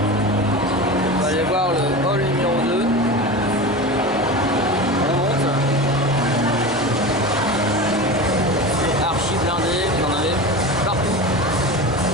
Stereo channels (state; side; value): normal; both; correlation 0.27